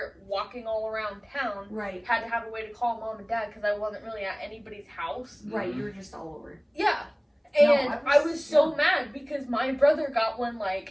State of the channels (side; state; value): both; identical; correlation 1.00